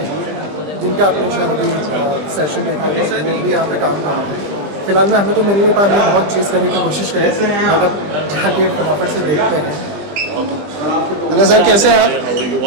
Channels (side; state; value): left; late; 20 ms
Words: जिनका आपने शायद अभी सेशन देखा होगा वो भी यहाँ पे काम कर रहे हैं। फिलहाल में हमें तो मिल नहीं पाया, हमने बहुत चीज़ करने की कोशिश करी, मतलब जाके फटाफट से देखते हैं। हेलो सर, कैसे हैं आप?